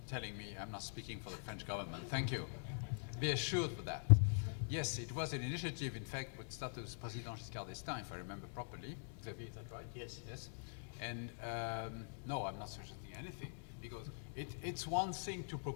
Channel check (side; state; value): right; silent; digital silence